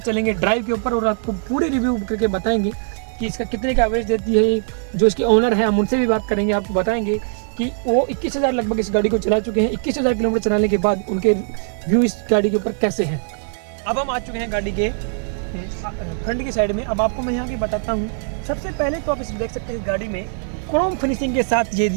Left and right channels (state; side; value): silent; left; digital silence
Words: चलेंगे ड्राइव के ऊपर और आपको पूरे रिव्यू करके बताएंगे कि इसका कितने का एवरेज देती है। जो इसके ओनर है हम उनसे भी बात करेंगे, आपको बताएंगे कि वो 21,000 लगभग इस गाड़ी को चला चुके हैं। 21,000 किलोमीटर चलाने के बाद उनके व्यू इस गाड़ी के ऊपर कैसे हैं। अब हम आ चुके हैं गाड़ी के फ्रंट की साइड में। अब आपको मैं यहाँ की बताता हूँ। सबसे पहले तो आप इस देख सकते हैं गाड़ी में क्रोम फिनिशिंग के साथ